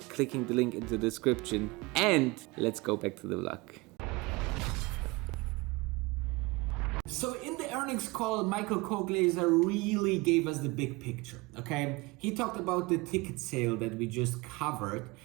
clicking the link in the description? And let's go back to the vlog. So in the earnings call, Michael Koglaser really gave us the big picture, okay? He talked about the ticket sale that we just covered,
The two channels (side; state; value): left; quieter; 24.2 dB